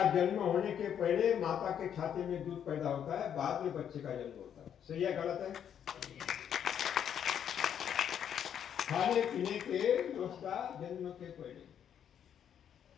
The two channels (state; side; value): quieter; right; 9.0 dB